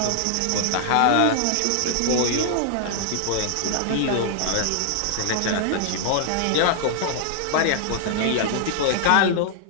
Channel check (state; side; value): different; both; correlation 0.00